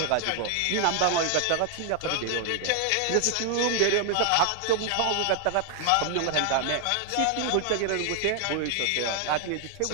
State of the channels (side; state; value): both; different; correlation 0.00